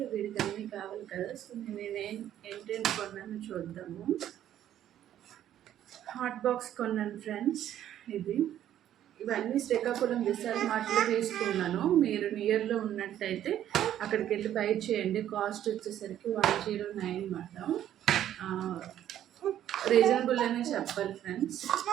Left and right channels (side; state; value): left; quieter; 11.4 dB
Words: వీడికి అన్నీ కావాలి కదా. సో ఏంటేంటి కొన్నాను చూద్దాము. హాట్ బాక్స్ కొన్నాను ఫ్రెండ్స్. ఇవన్నీ శ్రీకాకుళం విశాల్ మార్ట్లో తీసుకున్నాను. మీరు నియర్లో ఉన్నట్టయితే అక్కడికి వెళ్ళి బై చేయండి. కాస్ట్ వచ్చేసరికి 109 అన్నమాట. రీజనబుల్ అనే చెప్పాలి ఫ్రెండ్స్.